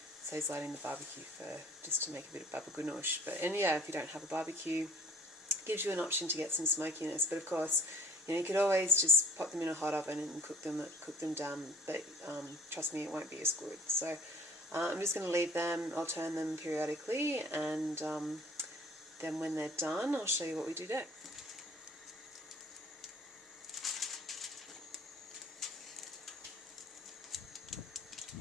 saves lighting the barbecue for just to make a bit of babaganoush. And yeah, if you don't have a barbecue, it gives you an option to get some smokiness. But of course, you could always just pop them in a hot oven and cook them down. But trust me, it won't be as good. So I'm just going to leave them. I'll turn them periodically, and then when they're done, I'll show you what we do next.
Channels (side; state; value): both; normal; correlation 0.52